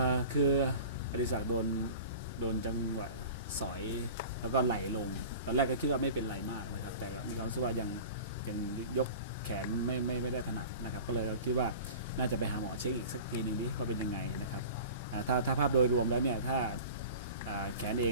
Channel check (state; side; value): inverted; both; correlation -0.38